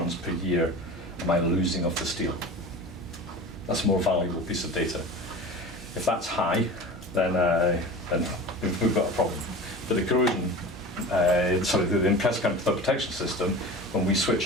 per year am I losing of the steel? That's a more valuable piece of data. If that's high, then we've got a problem. But the corrosion, the Impressed Current Cathodic Protection system, when we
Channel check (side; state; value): both; normal; correlation 0.35